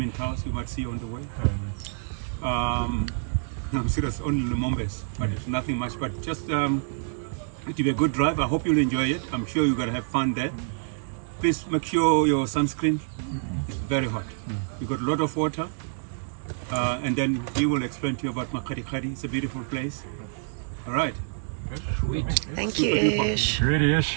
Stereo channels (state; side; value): silent; left; 60 dB below the other